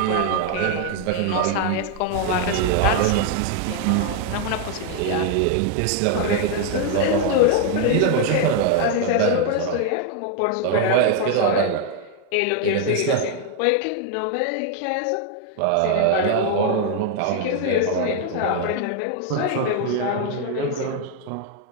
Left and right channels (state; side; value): different; both; correlation 0.00